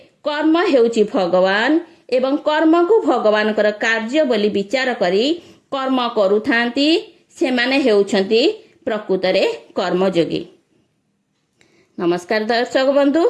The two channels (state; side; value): identical; both; correlation 1.00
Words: कर्म हेउची भगवान एवं कर्म को भगवान कर कार्य बोली विचार करी कर्म करुथांती सेमाने हेउछंती प्रकृतरे कर्मयोगी। नमस्कार दर्शक बंधु,